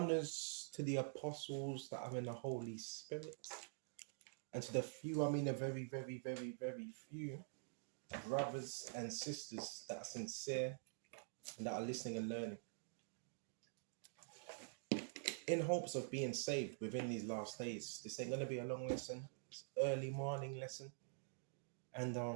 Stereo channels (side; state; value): left; silent; digital silence